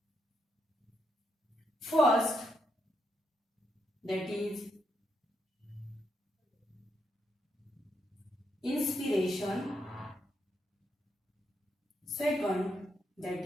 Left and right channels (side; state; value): both; normal; correlation 0.80